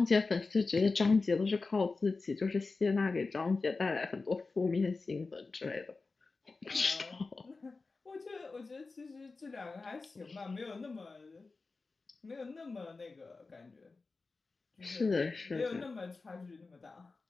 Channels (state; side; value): quieter; right; 3.9 dB